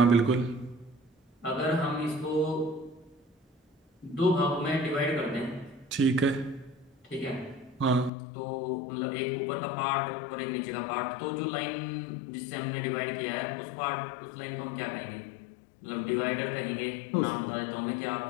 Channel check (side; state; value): right; drops out; at 8.1 s